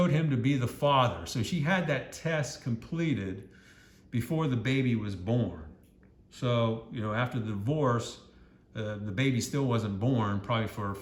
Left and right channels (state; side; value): identical; both; correlation 1.00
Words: him to be the father. So she had that test completed before the baby was born. So, after the divorce, the baby still wasn't born, probably for